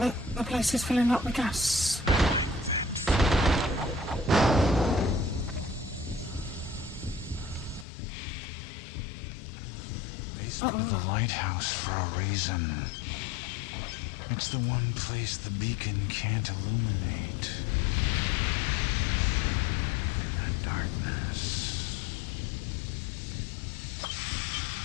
the place is filling up with gas. I'm here in the basement of the lighthouse for a reason. It's the one place the beacon can't illuminate. I thrive in that darkness.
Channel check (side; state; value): right; drops out; at 7.9 s